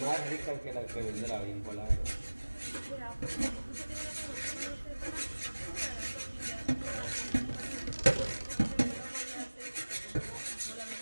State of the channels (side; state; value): both; inverted; correlation -1.00